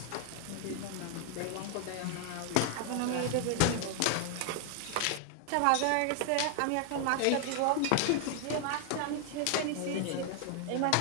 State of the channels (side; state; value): both; different; correlation 0.00